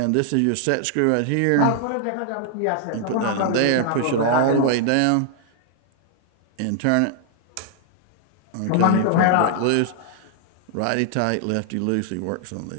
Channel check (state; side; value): different; both; correlation -0.01